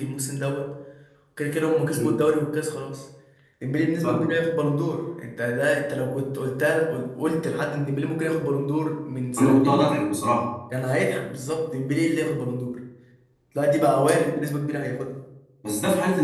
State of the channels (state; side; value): identical; both; correlation 1.00